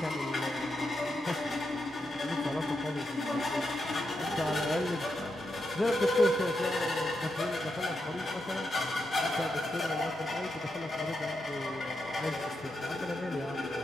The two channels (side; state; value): both; normal; correlation 0.85